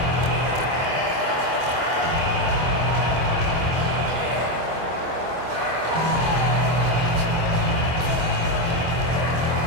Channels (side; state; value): left; late; 25 ms